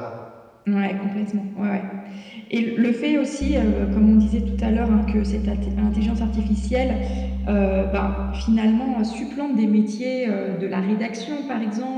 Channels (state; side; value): identical; both; correlation 1.00